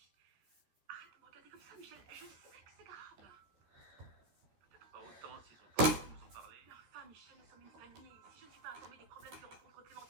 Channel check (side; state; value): left; late; 13 ms